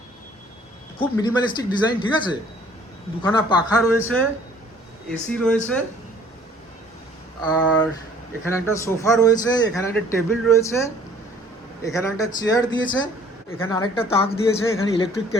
খুব মিনিমালিস্টিক ডিজাইন, ঠিক আছে। দুখানা পাখা রয়েছে, এসি রয়েছে, আর এখানে একটা সোফা রয়েছে, এখানে একটা টেবিল রয়েছে, এখানে একটা চেয়ার দিয়েছে, এখানে আরেকটা তাক দিয়েছে, এখানে ইলেকট্রিক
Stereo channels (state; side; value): normal; both; correlation 0.55